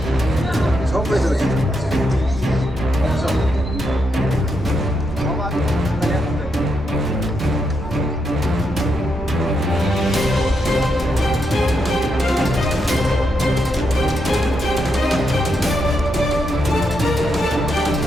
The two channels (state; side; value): normal; both; correlation 0.81